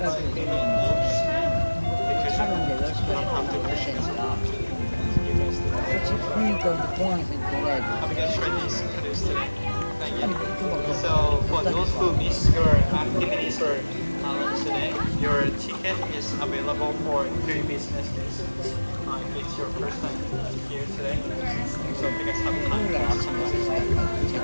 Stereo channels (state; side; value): inverted; both; correlation -1.00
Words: really use because you don't have to push it. Have you guys tried these canoes today? Not yet. So for those who miss your activities or today, your ticket is available for 3 business days. If it's your first time here today, so if you guys have time to watch some of this,